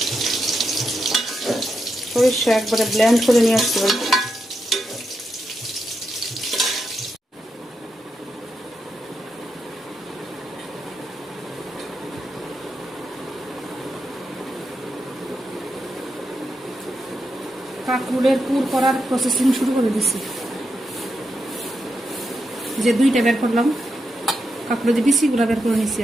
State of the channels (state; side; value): normal; both; correlation 0.85